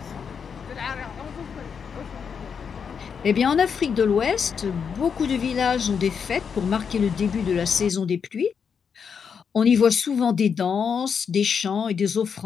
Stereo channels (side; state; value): right; quieter; 6.6 dB